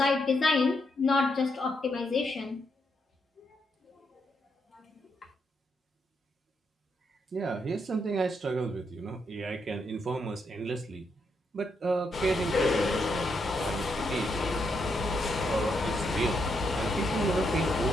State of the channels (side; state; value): both; normal; correlation 0.79